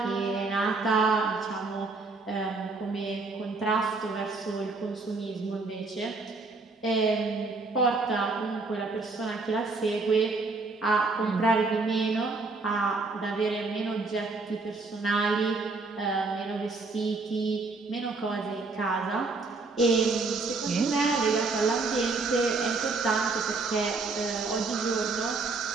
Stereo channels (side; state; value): left; quieter; 3.8 dB